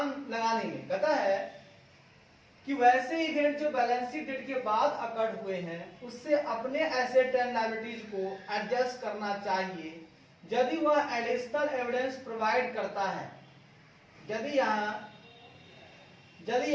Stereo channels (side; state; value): both; identical; correlation 1.00